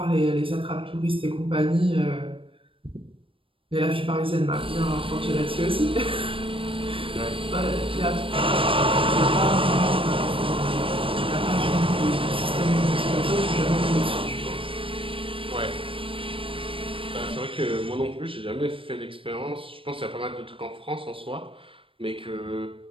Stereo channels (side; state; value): left; late; 0.26 ms